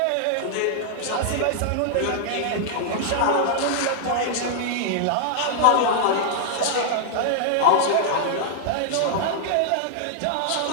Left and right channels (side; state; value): both; different; correlation -0.01